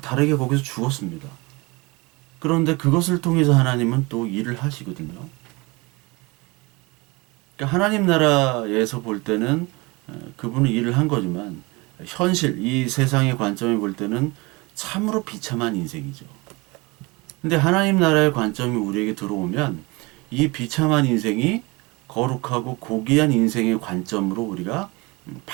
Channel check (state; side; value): quieter; left; 25.4 dB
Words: 거기서 죽었습니다. 그런데 그것을 통해서 하나님은 또 일을 하시거든요. 그러니까 하나님 나라에서 볼 때는 그분은 일을 한 거지만 현실, 이 세상의 관점에 볼 때는 참으로 비참한 인생이죠. 근데 하나님 나라의 관점이 우리에게 들어오면 이 비참한 인생이 거룩하고 고귀한 인생의 관점으로 우리가